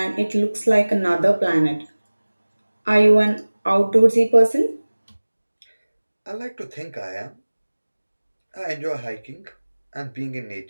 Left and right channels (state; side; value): inverted; both; correlation -1.00